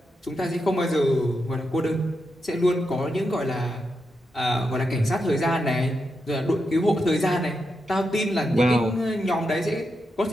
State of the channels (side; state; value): both; normal; correlation 0.86